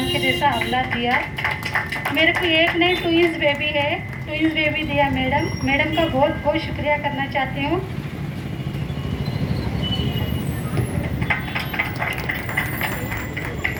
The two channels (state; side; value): identical; both; correlation 1.00